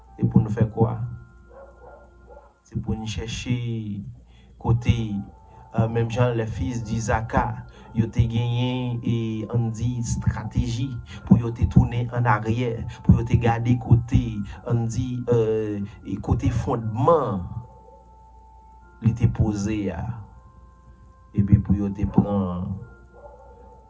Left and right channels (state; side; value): identical; both; correlation 1.00